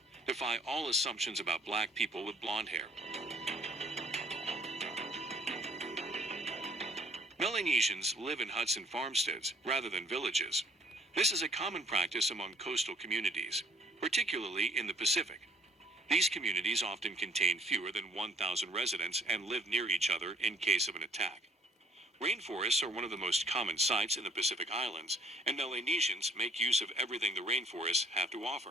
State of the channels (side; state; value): both; normal; correlation 0.61